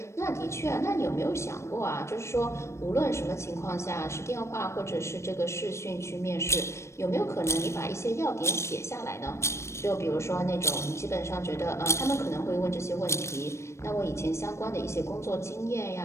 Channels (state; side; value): late; right; 0.13 ms